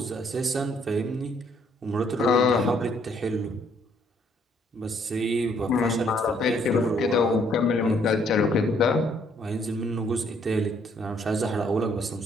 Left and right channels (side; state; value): both; normal; correlation 0.66